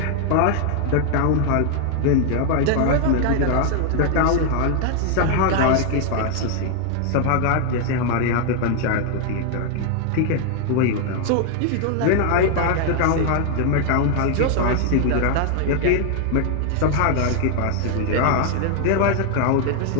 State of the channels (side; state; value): both; different; correlation 0.00